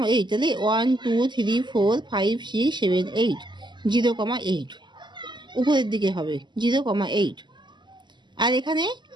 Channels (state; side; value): late; left; 0.22 ms